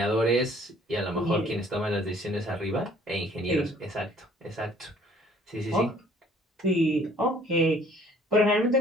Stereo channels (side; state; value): both; normal; correlation 0.57